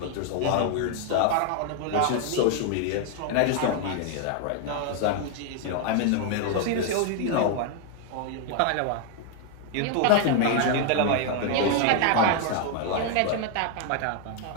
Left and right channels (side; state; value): both; different; correlation 0.00